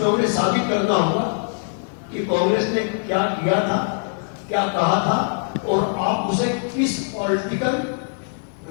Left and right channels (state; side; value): silent; right; digital silence